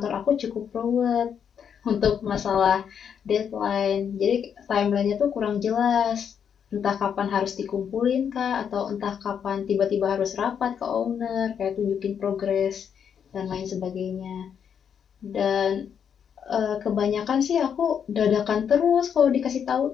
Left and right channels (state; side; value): quieter; right; 7.8 dB